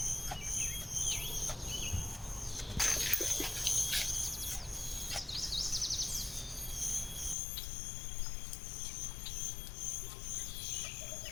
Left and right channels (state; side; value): drops out; right; at 7.4 s